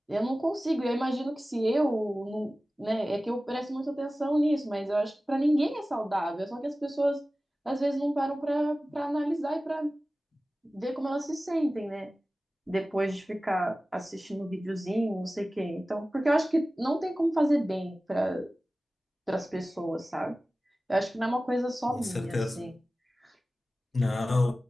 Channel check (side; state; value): both; normal; correlation 0.96